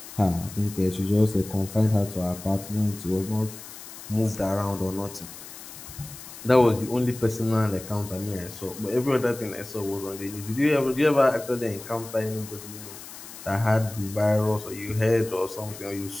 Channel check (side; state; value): left; noise; hiss, 14 dB below the sound